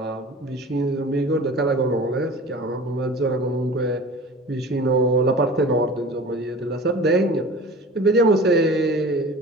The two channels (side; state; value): both; normal; correlation 0.39